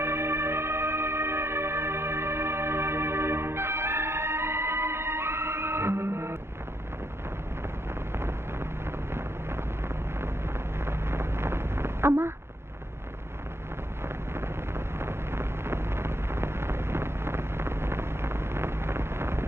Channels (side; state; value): left; late; 0.12 ms